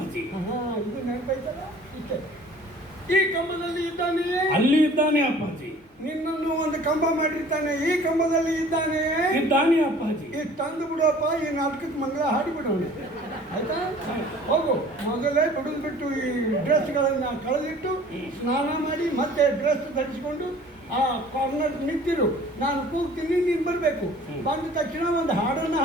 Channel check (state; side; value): normal; both; correlation 0.49